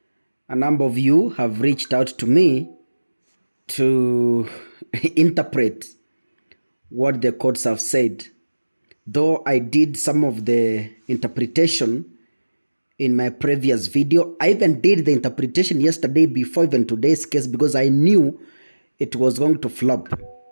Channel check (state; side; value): inverted; both; correlation -1.00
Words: A number of you have reached out to me to interpret what the courts have said. Though I did some of the interpretation in my previous video, I even did the interpretation yesterday before even today's case because I knew it was going to flop.